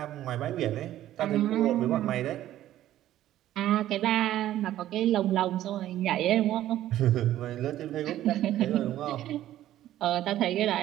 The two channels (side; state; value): left; quieter; 13.2 dB